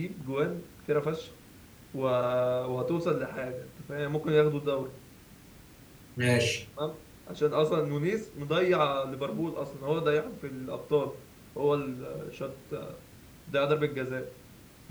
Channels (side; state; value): both; identical; correlation 1.00